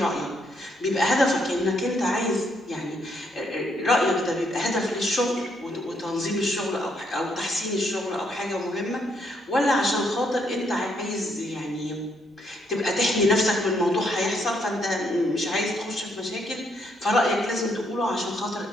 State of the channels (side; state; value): both; normal; correlation 0.73